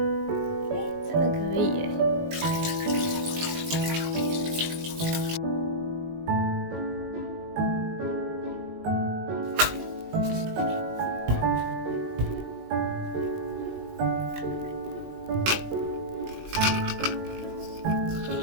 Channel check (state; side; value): late; left; 19 ms